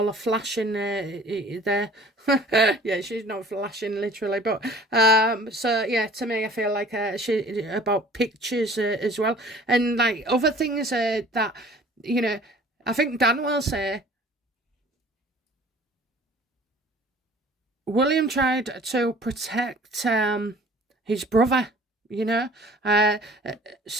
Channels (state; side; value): normal; both; correlation 0.49